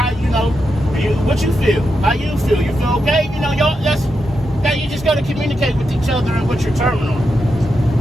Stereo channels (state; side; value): normal; both; correlation 0.86